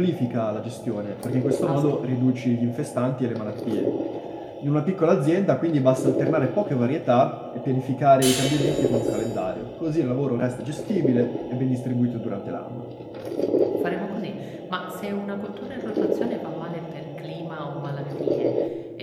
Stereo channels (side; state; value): both; identical; correlation 1.00